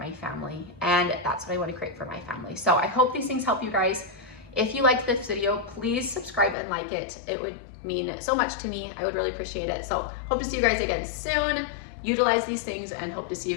family, and that's what I want to create for my family. So I hope these things help you guys. If you liked this video, please subscribe and like it. It would mean so much to me. I would really appreciate it. So hope to see you guys again soon. Utilize these things and hope to see you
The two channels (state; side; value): drops out; right; at 6.6 s